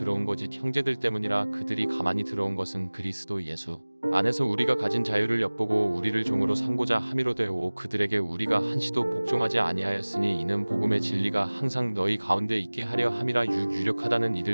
거짓 형제들 때문이라. 그들이 가만히 들어온 것은 그리스도 예수 안에서 우리가 가진 자유를 엿보고 우리를 종으로 삼고자 함이로되오. 그들에게 우리가 한시도 복종하지 아니하였으니 이는 복음의 진리가 항상 너희 가운데 있게 하려 함이라. 유력하다는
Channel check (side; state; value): both; inverted; correlation -1.00